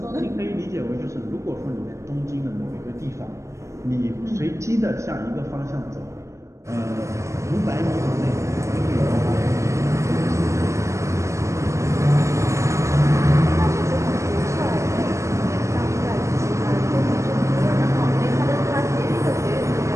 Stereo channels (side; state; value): left; late; 0.14 ms